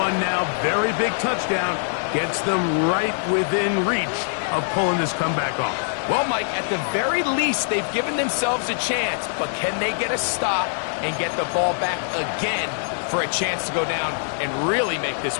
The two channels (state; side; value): silent; right; 63 dB below the other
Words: now. Very big touchdown. Gets them right within reach of pulling this comeback off. Well, Mike, at the very least, they've given themselves a chance. But can they get a stop and get the ball back again for a chance to go down and really make this